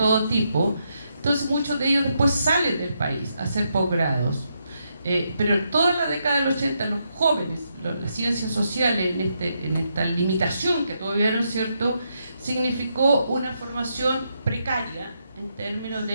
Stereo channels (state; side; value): inverted; both; correlation -0.80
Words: tipo. Entonces muchos de ellos después salen del país a hacer posgrados. Pero en toda la década del 80 los jóvenes, las ciencias sociales, en esta limitación que tuvieron, ¿cierto?, significó una formación precaria en términos